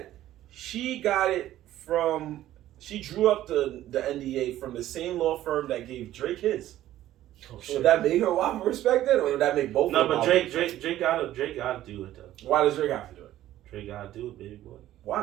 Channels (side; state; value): left; quieter; 13.6 dB